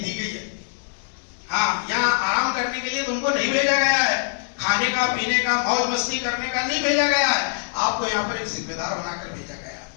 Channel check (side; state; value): right; silent; digital silence